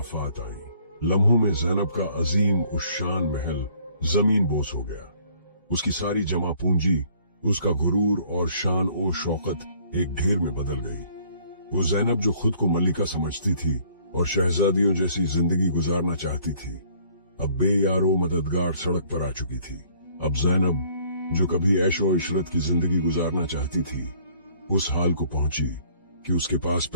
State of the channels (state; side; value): inverted; both; correlation -0.59